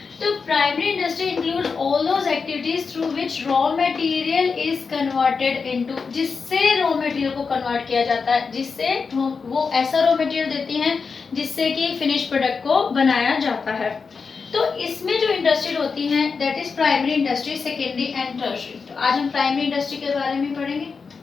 तो primary industry include all those activities through which raw material is converted into, जिससे रॉ मटेरियल को कन्वर्ट किया जाता है, जिससे वो ऐसा रॉ मटेरियल देती हैं जिससे कि फिनिश प्रोडक्ट को बनाया जाता है। तो इसमें जो इंडस्ट्री होती हैं, that is primary industry, secondary and tertiary. तो आज हम प्राइमरी इंडस्ट्री के बारे में पढ़ेंगे।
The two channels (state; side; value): quieter; right; 5.1 dB